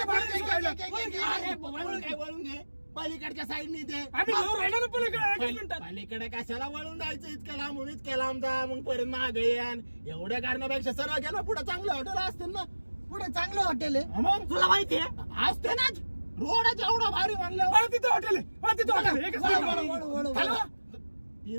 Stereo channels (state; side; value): inverted; both; correlation -1.00